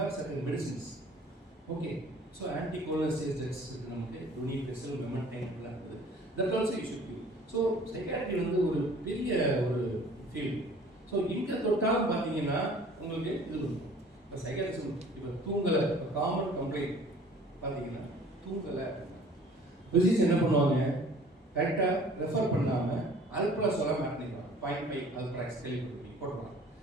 certain medicines. Okay, so ஆன்டிகோலோசிஸ்டஸ் நமக்கு டுனி பெசல் மெமன்டைன் எல்லாம் இருக்குது. That also you should give. So psychiatry வந்து ஒரு பெரிய ஒரு ஃபீல்டு. ஸோ இங்கே தொட்டாலும் பார்த்தீங்கன்னா உங்களுக்கு இது இருக்கும். இப்போ சைக்காட்ரிஸ்ட் இப்போ தூங்கலை, இப்போ காமன் கம்ப்ளைண்ட் பார்த்தீங்கன்னா தூங்கலை, பிசிக்ஸ் என்ன பண்ணுவாங்க, கரெக்டாக ரெஃபர் பண்ணாமல் அல்ப்ரா சொல்ல மாட்டேங்கிறாங்க. 0.5 அல்ப்ராக்ஸ் கேள்விப்பட்டு போட்டுருவாங்க.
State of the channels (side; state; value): both; normal; correlation 0.50